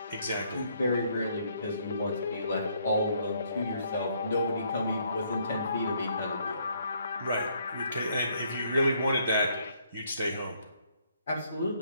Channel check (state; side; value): inverted; both; correlation -0.69